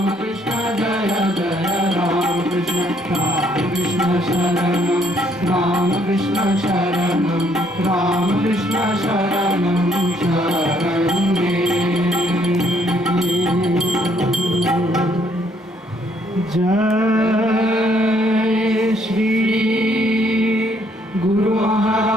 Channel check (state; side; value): normal; both; correlation 0.67